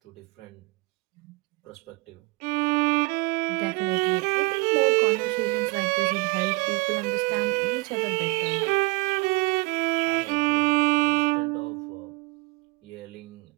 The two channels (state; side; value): quieter; left; 26.4 dB